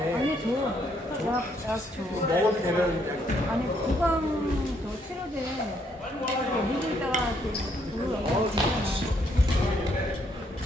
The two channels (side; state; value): both; normal; correlation 0.71